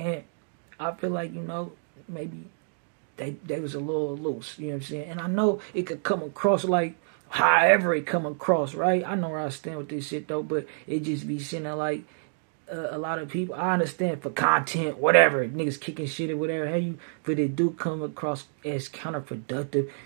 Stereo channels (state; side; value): silent; left; digital silence